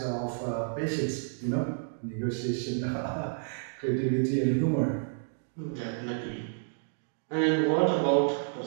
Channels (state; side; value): silent; left; digital silence